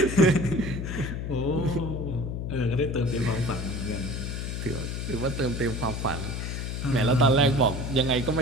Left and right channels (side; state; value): left; noise; hum, 4 dB below the sound